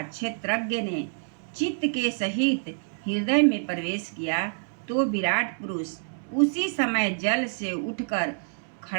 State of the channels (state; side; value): silent; left; 60 dB below the other